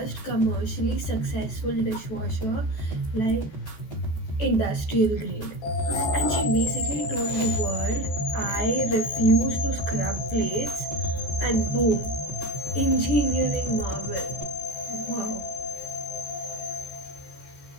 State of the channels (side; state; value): right; late; 14 ms